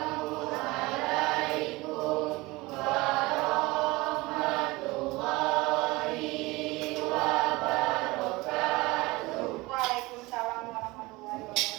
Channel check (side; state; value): left; quieter; 22.1 dB